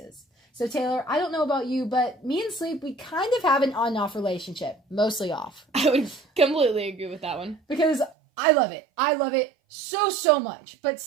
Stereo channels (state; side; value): drops out; left; at 8.2 s